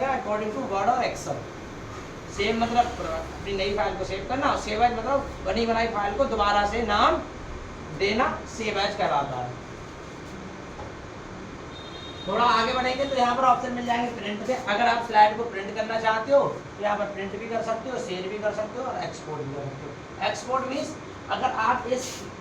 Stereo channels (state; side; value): identical; both; correlation 1.00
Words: अकॉर्डिंग टू वर्ड और एक्सेल। सेव मतलब अपनी नई फाइल को सेव करना और सेव एज मतलब बनी बनाई फाइल को दोबारा से नाम देना, सेव एज कहलाता है। थोड़ा आगे बढ़ेंगे तो यहाँ पर ऑप्शन मिल जाएंगे प्रिंट के। अगर आप स्लाइड को प्रिंट करना चाहते हो तो यहाँ पर प्रिंट भी कर सकते हो, शेयर भी कर सकते हो और एक्सपोर्ट भी कर सकते हो। एक्सपोर्ट मीन्स अगर आप इस